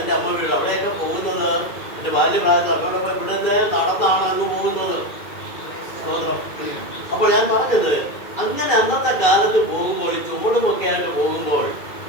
അമ്മ വീട്. അവിടെയൊക്കെ പോകുന്നത് എൻ്റെ ബാല്യപ്രായത്തിൽ അമ്മയോടൊപ്പം ഇവിടെ നിന്ന് നടന്നാണ് അങ്ങ് പോകുന്നത്. അപ്പോൾ ഞാൻ പറഞ്ഞത്, അങ്ങനെ അന്നത്തെ കാലത്ത് പോകുമ്പോൾ ഈ ചുമടുമൊക്കെ ആയിട്ട് പോകുമ്പോൾ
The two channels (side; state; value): right; late; 2.4 ms